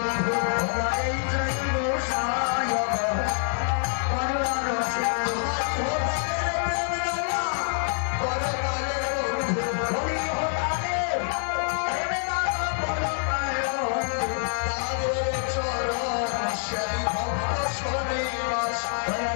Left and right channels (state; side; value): silent; right; digital silence